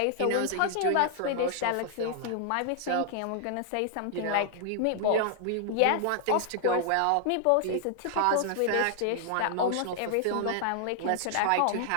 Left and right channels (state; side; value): different; both; correlation 0.00